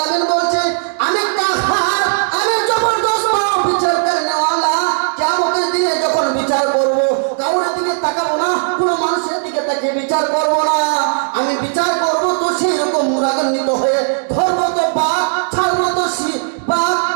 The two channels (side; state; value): left; silent; digital silence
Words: বলছে, আমি কাহার, আমি জবরদস্ত বিচার করনেওয়ালা। কিয়ামতের দিনে যখন বিচার করব, কারোর দিকে তাকাবো না, কোনো মানুষের